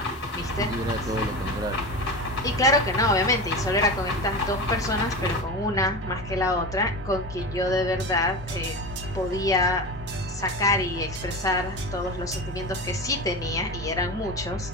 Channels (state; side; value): normal; both; correlation 0.26